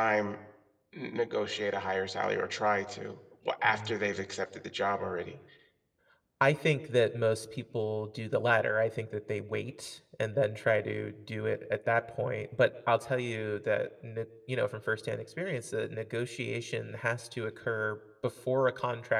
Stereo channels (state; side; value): identical; both; correlation 1.00